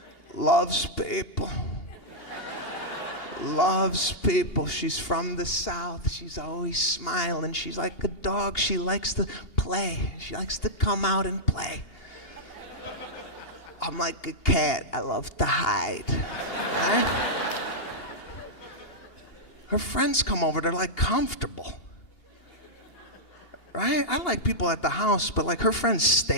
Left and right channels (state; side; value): late; right; 2.8 ms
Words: Loves people. Loves people. She's from the South. She's always smiling. She's like a dog. She likes to play. She likes to come out and play. I'm like a cat. I love to hide. Right? Her friends come over. They're like comfortable. Right? I like people at the house, but like her friends